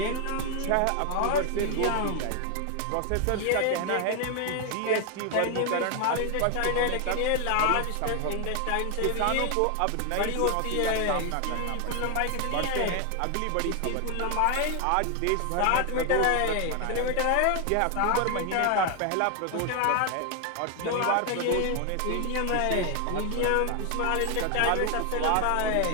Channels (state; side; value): different; both; correlation 0.01